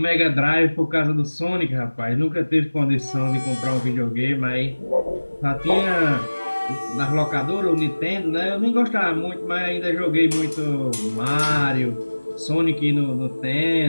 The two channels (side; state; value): both; inverted; correlation -1.00